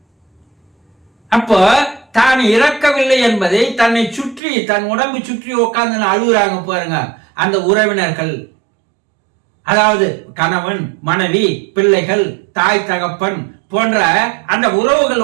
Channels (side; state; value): left; drops out; at 4.4 s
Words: அப்போ தான் இறக்கவில்லை என்பதை தன்னை சுற்றி, தன் உடம்பு சுற்றி உட்கார்ந்து அழுகுறாங்க பாருங்க அந்த உறவினர்கள், அதாவது கணவன், மனைவி, பிள்ளைகள், தாய், தகப்பன் போன்ற அந்த